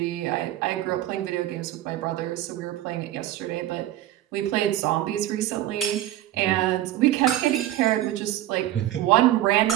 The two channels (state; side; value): quieter; left; 13.8 dB